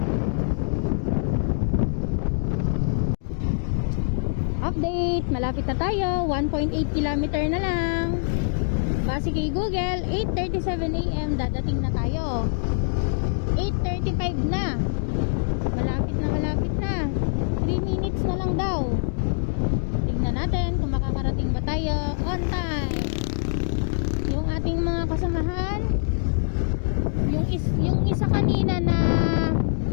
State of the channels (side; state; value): right; silent; digital silence